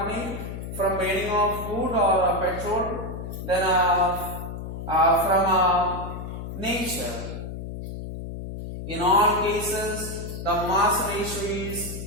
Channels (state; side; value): noise; left; hum, 8 dB below the sound